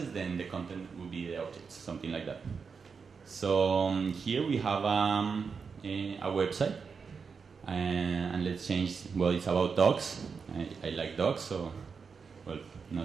then the content will be the objects, something like that. So here we have a website, and let's change, well, it's about dogs. I like dogs, so, well,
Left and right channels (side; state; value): left; quieter; 5.6 dB